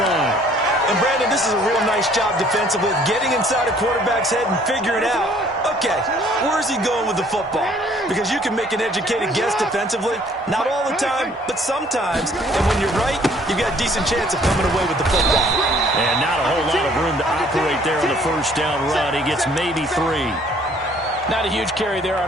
And, Brandon, this is a real nice job defensively of getting inside a quarterback's head and figuring out, okay, where's he going with the football? Because you can make an educated guess defensively. Not all the time, but sometimes. And when you're right, you've got a decent chance of coming away with the football. And not a whole lot of room to operate there on the first down run. He gets maybe 3. Not a huge carry there on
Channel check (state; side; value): normal; both; correlation 0.59